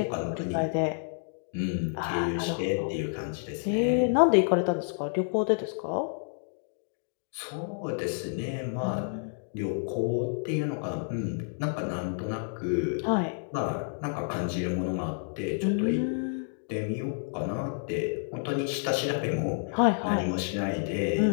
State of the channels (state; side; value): silent; right; digital silence